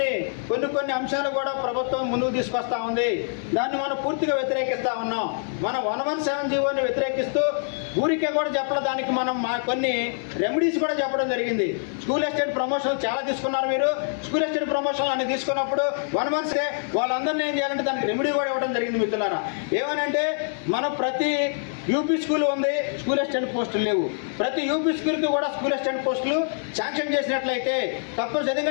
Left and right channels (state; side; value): silent; right; 62 dB below the other